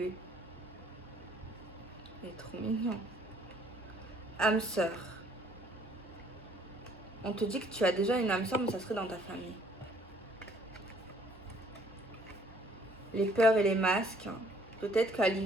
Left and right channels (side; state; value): both; normal; correlation 0.61